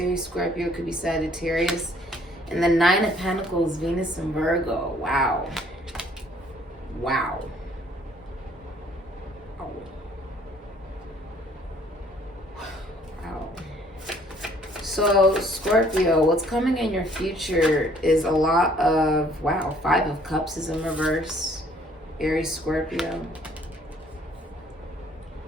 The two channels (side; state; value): both; normal; correlation 0.60